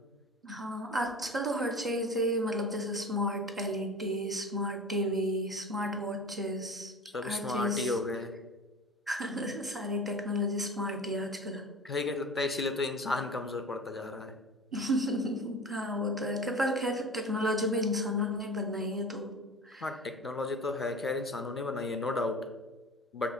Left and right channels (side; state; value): both; normal; correlation 0.36